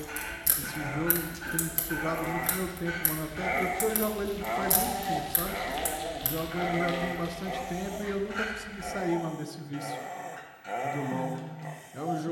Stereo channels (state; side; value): identical; both; correlation 1.00